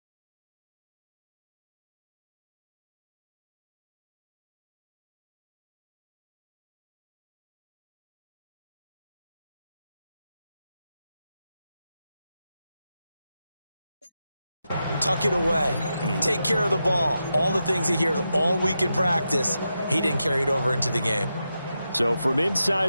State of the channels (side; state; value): both; inverted; correlation -0.88